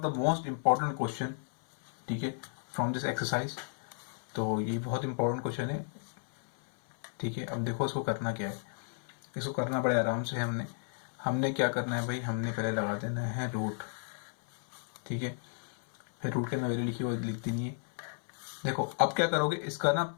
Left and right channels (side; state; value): right; silent; 56 dB below the other